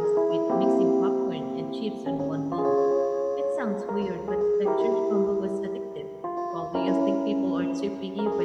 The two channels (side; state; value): both; identical; correlation 1.00